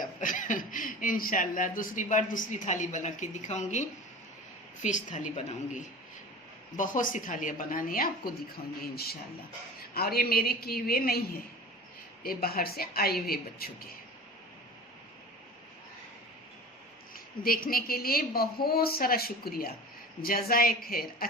इंशाल्लाह दूसरी बार दूसरी थाली बना के दिखाऊंगी, फिश थाली बनाऊंगी। बहुत सी थालियाँ बनानी है, आपको दिखाऊंगी इंशाल्लाह। और ये मेरे किए हुए नहीं है, ये बाहर से आए हुए बच्चों के। देखने के लिए बहुत सारा शुक्रिया, जज़ाए खैर।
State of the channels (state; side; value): normal; both; correlation 0.36